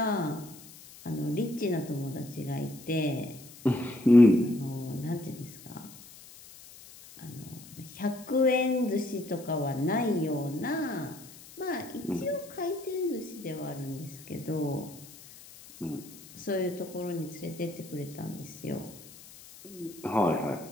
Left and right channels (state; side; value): noise; left; hiss, 19 dB below the sound